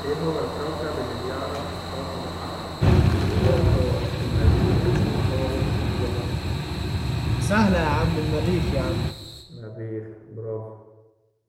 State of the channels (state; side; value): identical; both; correlation 1.00